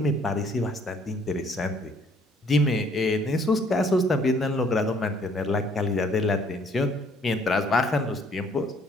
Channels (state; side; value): normal; both; correlation 0.62